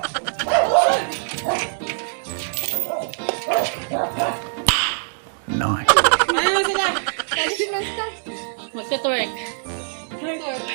Ano na sila? Magka-twerk.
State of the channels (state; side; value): silent; left; digital silence